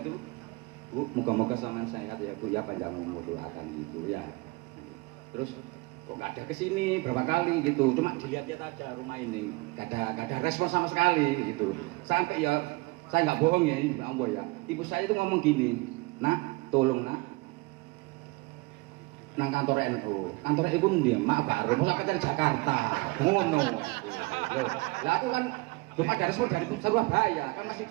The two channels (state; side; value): quieter; left; 24.5 dB